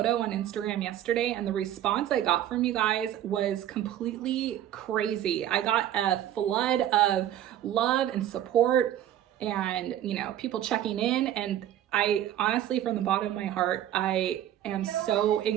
on Instagram yesterday, and the response I got from you guys was completely crazy. I got a flood of love and support and, you know, people checking in. And I honestly, from the bottom of my heart, I am so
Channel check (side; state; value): left; quieter; 11.7 dB